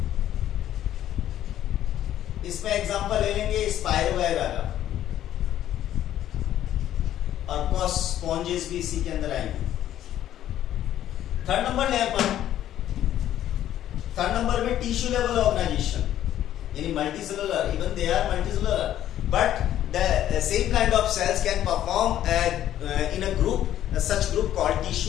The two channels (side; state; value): right; quieter; 11.9 dB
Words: इसमें एग्जांपल ले लेंगे स्पाइरोगाइरा का, और स्पॉन्जेस भी इसी के अंदर आएंगे. थर्ड नंबर ले अपन, थर्ड नंबर में टिश्यू लेवल ऑर्गेनाइजेशन यानी multicellular. Even they are multicellular but the same kind of cells can perform in a group, such group called